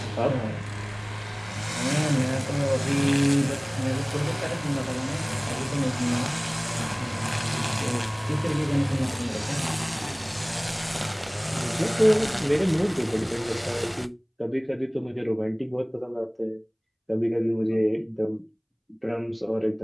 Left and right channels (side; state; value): both; identical; correlation 1.00